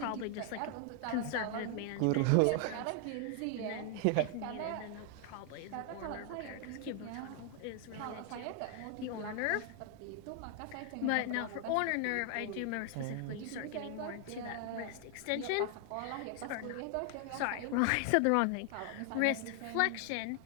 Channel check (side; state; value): both; different; correlation 0.00